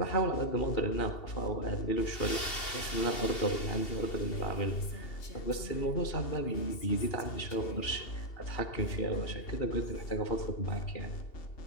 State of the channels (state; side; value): late; right; 2.7 ms